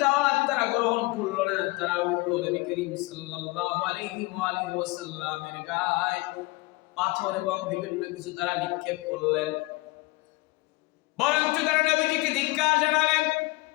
দাওয়াত তারা গ্রহণ করলো না, তারা উল্টো নবী করিম সাল্লাল্লাহু আলাইহি ওয়াসাল্লামের গায়ে পাথর এবং বিভিন্ন কিছু তারা নিক্ষেপ করলেন। বরঞ্চ তারা নবীজিকে ধিক্কার জানালেন।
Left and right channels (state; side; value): quieter; right; 22.9 dB